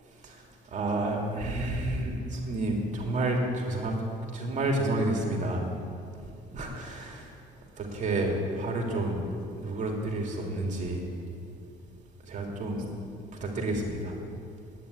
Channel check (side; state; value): both; normal; correlation 0.52